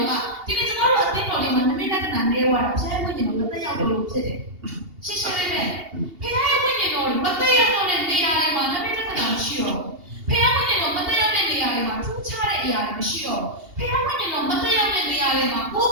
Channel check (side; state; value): left; late; 2.8 ms